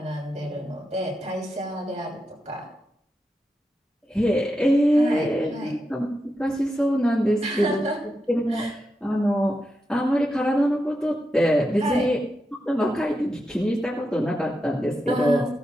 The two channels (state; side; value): normal; both; correlation 0.87